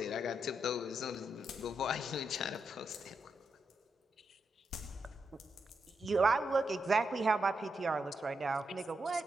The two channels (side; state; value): both; normal; correlation 0.84